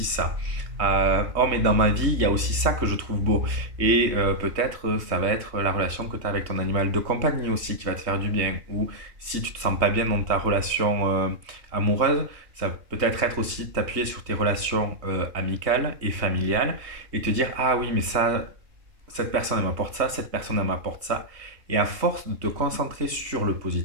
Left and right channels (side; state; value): left; late; 3.2 ms